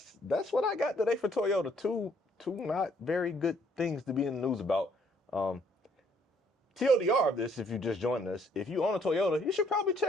what I got today for Toyota. Two not very good things to be in the news about. TLDR of this, if you just joined us, if you own a Toyota, you should probably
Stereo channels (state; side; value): normal; both; correlation 0.66